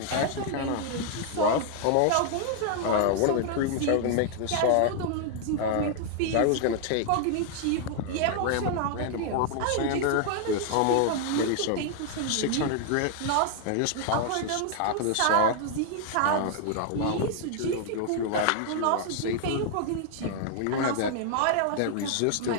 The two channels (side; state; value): both; different; correlation 0.00